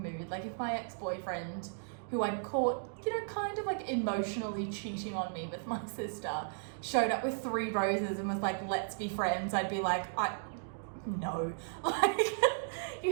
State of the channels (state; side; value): silent; left; digital silence